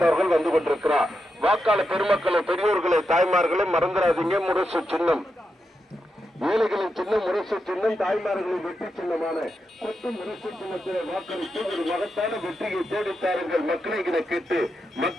அவர்கள் வந்து கொண்டிருக்கிறார். வாக்காளர் பெருமக்களை, பெரியோர்களை, தாய்மார்களை மறந்துடாதீங்க. முரசு சின்னம் ஏழைகளின் சின்னம் முரசு சின்னம், தாய்மார்களின் வெற்றி சின்னமான கொட்டு முரசு சின்னத்திலே வாக்களித்து ஒரு மகத்தான வெற்றியை தேடித்தாருங்கள் மக்களை என கேட்டு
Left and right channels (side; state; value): both; normal; correlation 0.86